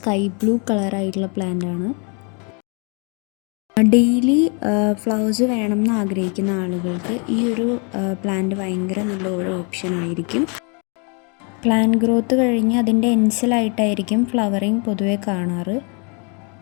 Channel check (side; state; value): right; quieter; 35.1 dB